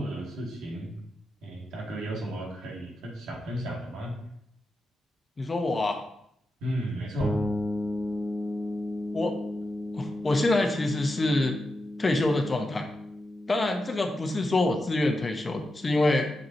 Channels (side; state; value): both; normal; correlation 0.89